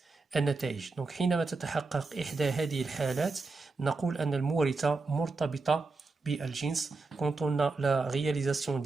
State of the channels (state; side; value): quieter; left; 3.7 dB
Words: النتائج. donc حينما تتحقق إحدى هذه الحالات نقول أن المورثة مرتبطة بالجنس. Quand on a la réalisation